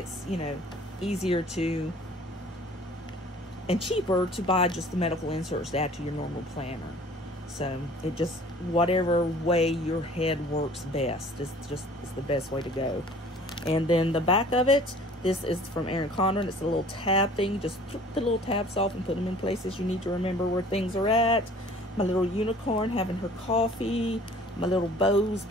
you know, easier to and cheaper to buy just the medical inserts to add to your normal planner. So it just, whatever way your head works best is the best way to go. And then the back of it, this is from Erin Condren. It's a little tab thing. Just flip the little tabs off and put them in places you need to remember where things are at. My little unicorn having her coffee. My little bows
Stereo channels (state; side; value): normal; both; correlation 0.49